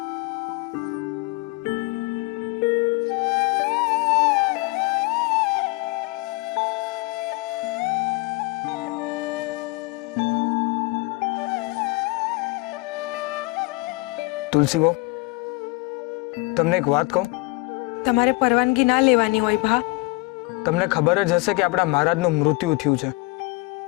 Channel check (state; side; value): quieter; right; 24.6 dB